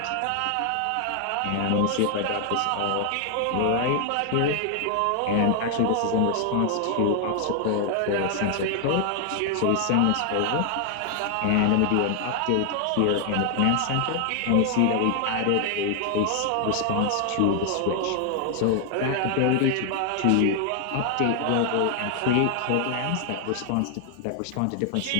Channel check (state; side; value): different; both; correlation 0.00